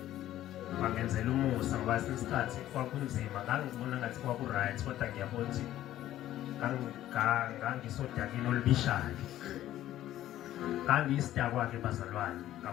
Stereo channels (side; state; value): right; quieter; 13.3 dB